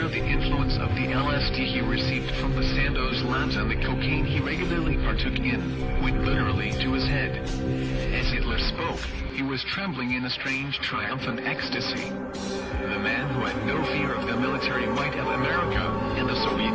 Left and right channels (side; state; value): both; identical; correlation 1.00